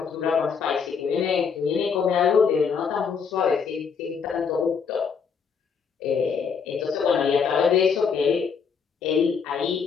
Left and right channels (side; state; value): right; quieter; 6.2 dB